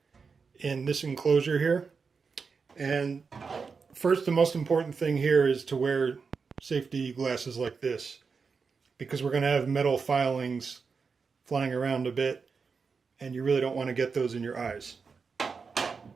in this enclosure here. And first, the most important thing here is to wear safety glasses like this, because we're going to have metal filings flying around a bit, and you really don't want to get those in your eyes.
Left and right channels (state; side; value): quieter; left; 5.2 dB